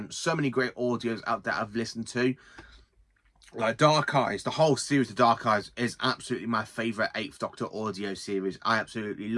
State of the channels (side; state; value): both; identical; correlation 1.00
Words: So many great audios out there I've listened to. Like Dark Eyes, the whole series of Dark Eyes is absolutely my favourite 8th Doctor audio series. I absolutely